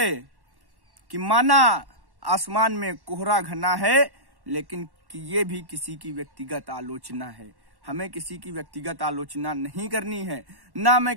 कि माना आसमान में कोहरा घना है, लेकिन कि ये भी किसी की व्यक्तिगत आलोचना है। हमें किसी की व्यक्तिगत आलोचना नहीं करनी है। ना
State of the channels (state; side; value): late; left; 1.1 ms